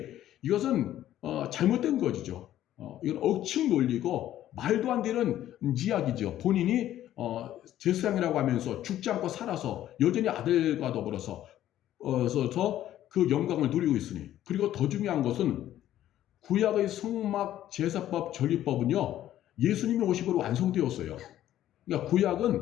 이것은 잘못된 것이죠. 이건 억측 논리고 말도 안 되는 이야기죠. 본인이 제사장이라고 하면서 죽지 않고 살아서 여전히 아들과 더불어서 그 영광을 누리고 있으니. 그리고 더 중요한 것은 구약의 성막 제사법 전리법은요, 예수님이 오심으로 완성되었어요. 그러니까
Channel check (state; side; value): quieter; right; 12.6 dB